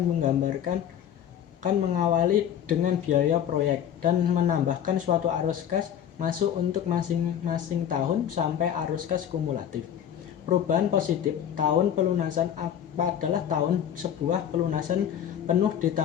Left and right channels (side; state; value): right; quieter; 9.5 dB